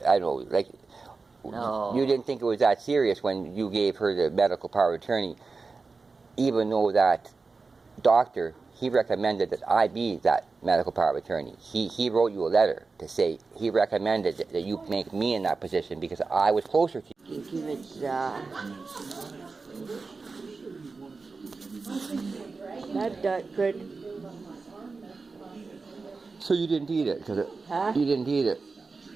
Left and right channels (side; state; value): left; quieter; 4.2 dB